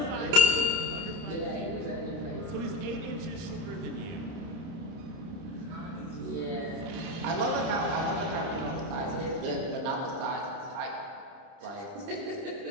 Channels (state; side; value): late; left; 30 ms